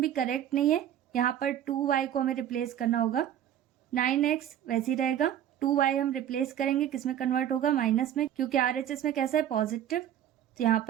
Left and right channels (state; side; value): quieter; left; 10.7 dB